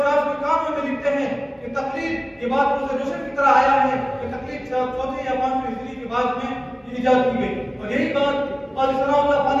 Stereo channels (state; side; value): identical; both; correlation 1.00